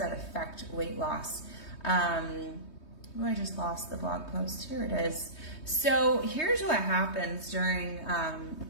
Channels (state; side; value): late; right; 3.2 ms